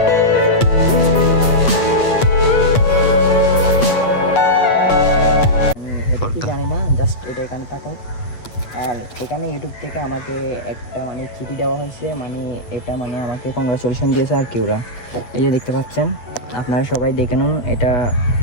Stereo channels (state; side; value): late; right; 8.2 ms